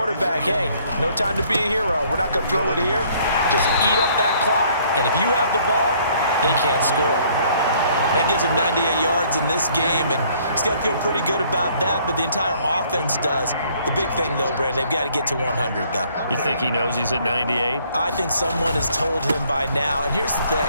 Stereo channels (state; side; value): inverted; both; correlation -0.62